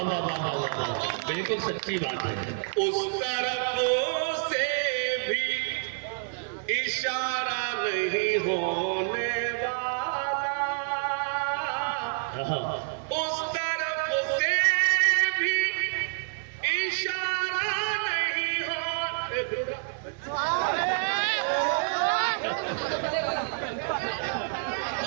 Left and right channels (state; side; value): silent; left; digital silence